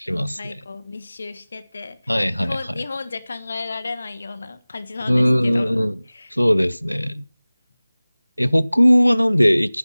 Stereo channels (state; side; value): inverted; both; correlation -0.99